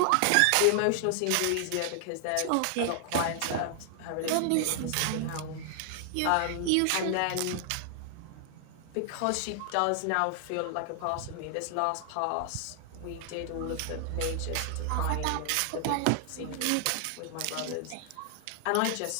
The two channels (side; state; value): both; different; correlation 0.00